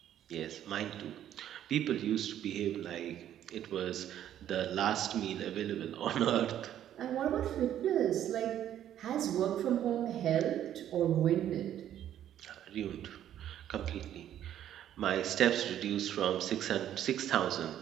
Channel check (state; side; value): quieter; left; 11.1 dB